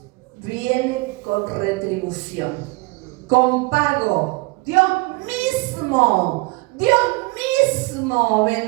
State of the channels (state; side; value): quieter; left; 24.8 dB